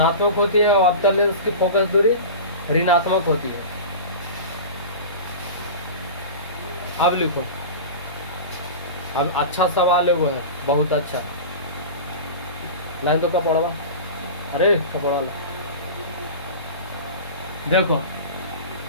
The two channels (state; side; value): inverted; both; correlation -0.31